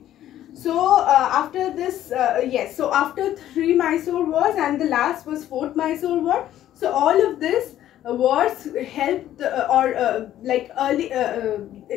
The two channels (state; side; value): quieter; right; 12.4 dB